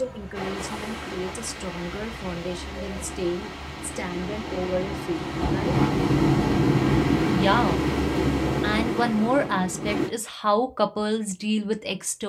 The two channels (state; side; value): identical; both; correlation 1.00